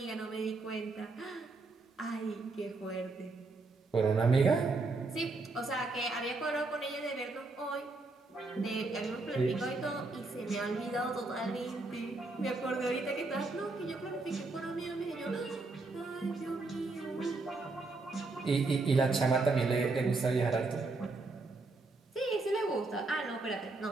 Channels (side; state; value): left; quieter; 3.5 dB